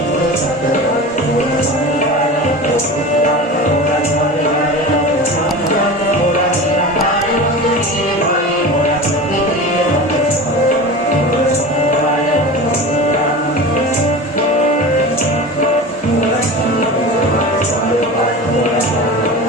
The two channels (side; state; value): both; normal; correlation 0.32